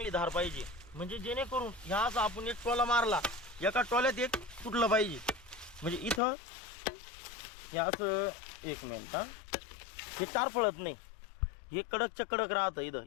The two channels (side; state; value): right; drops out; at 6.2 s